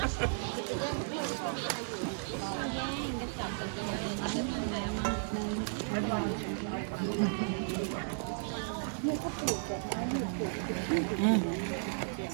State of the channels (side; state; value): left; silent; digital silence